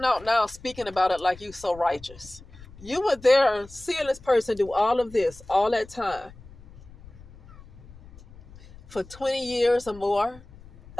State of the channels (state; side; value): noise; left; rumble, 20 dB below the sound